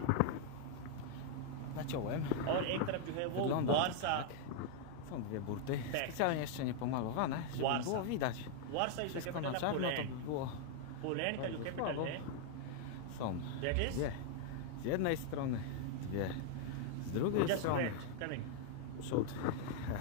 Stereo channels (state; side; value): different; both; correlation 0.00